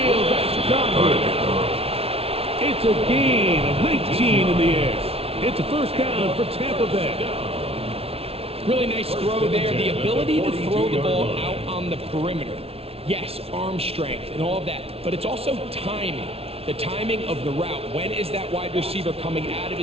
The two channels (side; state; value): left; late; 0.29 ms